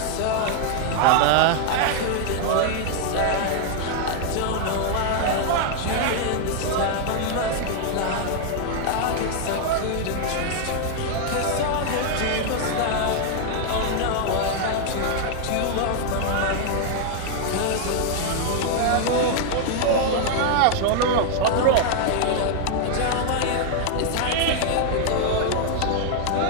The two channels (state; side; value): different; both; correlation 0.00